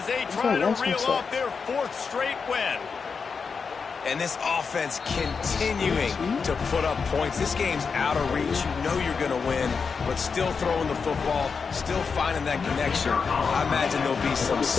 they He's try not to lost reel himself. off their 4th straight win. And this offense continuing to put up points. This game's out of reach. You know you're going to win, but still throwing the football, still finding that connection. I imagine there'll be some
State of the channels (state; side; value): quieter; right; 5.4 dB